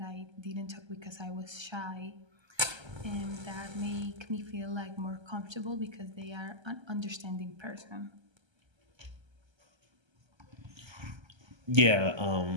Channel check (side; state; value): left; late; 1.3 ms